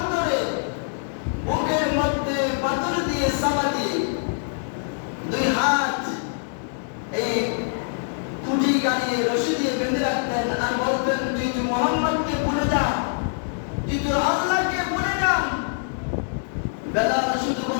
বুকের মধ্যে পাথর দিয়ে চাপা দিয়ে দুই হাত এই খুঁটি গাড়িয়ে রশি দিয়ে বেঁধে রাখতেন আর বলতেন, তুই মোহাম্মদকে ভুলে যা, তুই তোর আল্লাহকে ভুলে যা। বেলাল শুধু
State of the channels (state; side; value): silent; right; digital silence